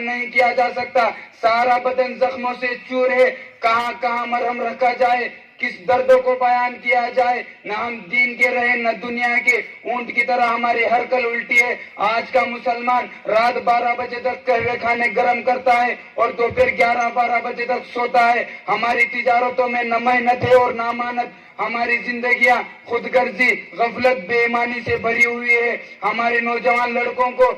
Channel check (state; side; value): identical; both; correlation 1.00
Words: نہیں کیا جا سکتا، سارا بدن زخموں سے چور ہے، کہاں کہاں مرہم رکھا جائے، کس درد کو بیان کیا جائے، نہ ہم دین کے رہے نہ دنیا کے، اونٹ کی طرح ہماری ہر کل الٹی ہے۔ آج کا مسلمان رات 12 بجے تک قہوے کھانے گرم کرتا ہے اور دوپہر 11-12 بجے تک سوتا ہے۔ ہماری تجارتوں میں نہ محنت ہے اور نہ امانت، ہماری زندگیاں خود غرضی، غفلت، بے ایمانی سے بھری ہوئی ہے۔ ہمارے نوجوان لڑکوں کو